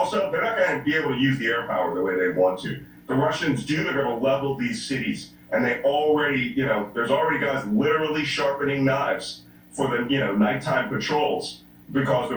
they're not going to be able to use the air power the way they want to. The Russians they're going to level these cities, and they already, there's already guys literally sharpening knives for the, nighttime patrols, because the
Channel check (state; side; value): identical; both; correlation 1.00